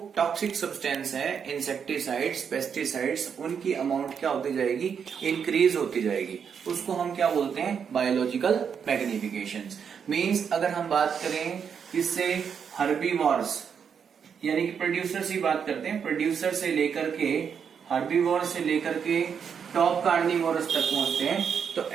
टॉक्सिक सब्सटेंस है, इंसेक्टिसाइड्स, पेस्टिसाइड्स, उनकी अमाउंट क्या होती जाएगी, इंक्रीज होती जाएगी। उसको हम क्या बोलते हैं, बायोलॉजिकल मैग्निफिकेशन। मीन्स अगर हम बात करें इससे हर्बीवॉर्स, यानी कि प्रोड्यूसर से बात करते हैं, प्रोड्यूसर से लेकर के हर्बीवॉर से लेकर के टॉप कार्निवोरस तक पहुंचते हैं, तो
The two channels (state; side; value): quieter; left; 7.1 dB